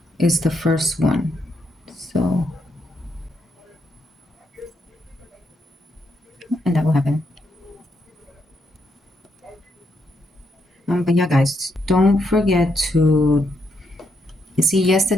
is the first one. So, and that will happen. But yeah, guys, don't forget to, you see,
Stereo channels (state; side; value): normal; both; correlation 0.78